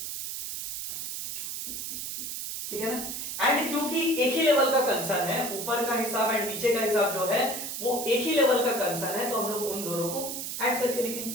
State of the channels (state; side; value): noise; right; hiss, 5 dB below the sound